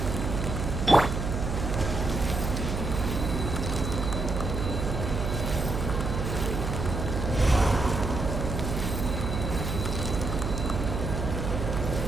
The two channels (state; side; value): noise; right; hum, 2 dB below the sound